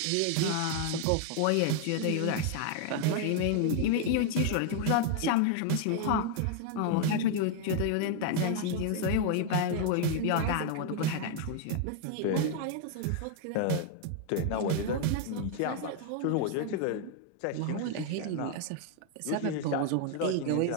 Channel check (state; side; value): different; both; correlation 0.00